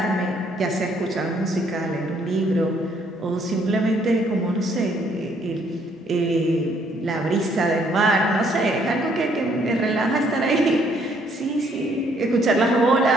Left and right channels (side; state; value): both; normal; correlation 0.67